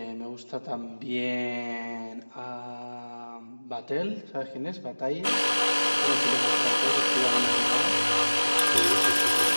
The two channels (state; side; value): inverted; both; correlation -1.00